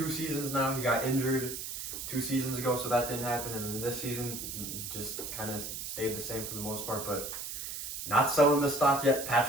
seasons now. He got injured 2 seasons ago, so that didn't happen. And then this season just kind of stayed the same for the most part. But not selling the stock yet.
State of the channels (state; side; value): noise; right; hiss, 6 dB below the sound